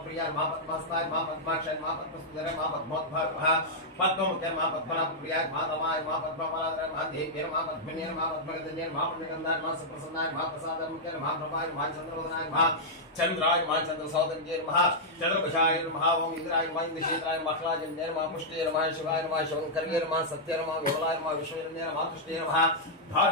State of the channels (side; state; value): both; normal; correlation -0.08